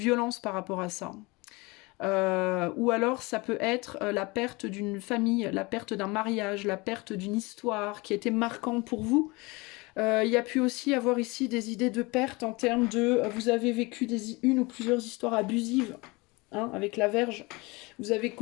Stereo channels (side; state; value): right; quieter; 25.1 dB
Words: par rapport à ça. Ou alors ça peut être la perte d'une famille, la perte d'un mariage, la perte d'une histoire qui a été marquante pour vous. Il y a pu aussi avoir ici des idées de perte en termes de vous avez vécu une ou plusieurs histoires abusives, hein, avec la verge. Vous avez